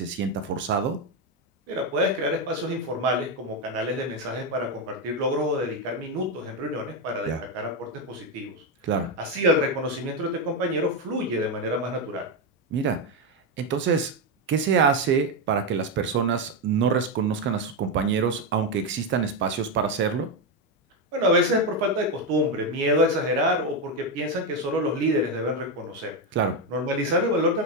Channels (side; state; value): both; normal; correlation 0.08